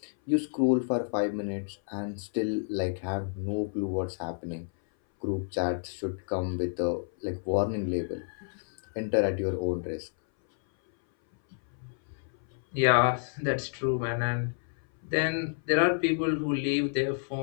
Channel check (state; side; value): silent; right; 58 dB below the other